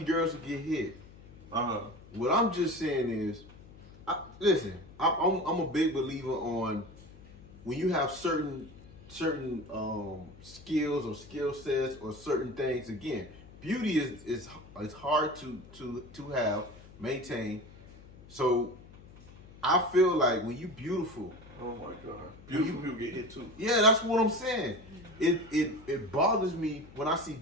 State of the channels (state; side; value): noise; left; hum, 20 dB below the sound